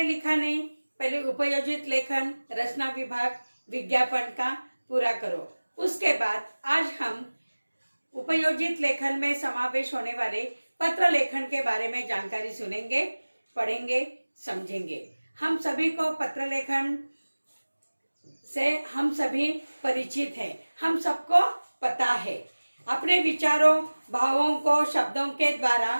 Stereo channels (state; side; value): inverted; both; correlation -1.00